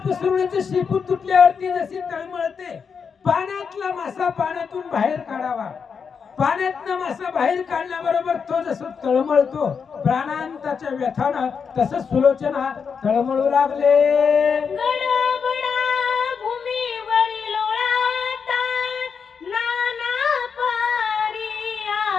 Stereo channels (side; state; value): right; quieter; 6.1 dB